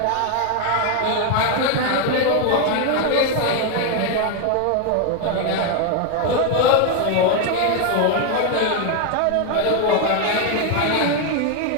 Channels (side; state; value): both; different; correlation 0.01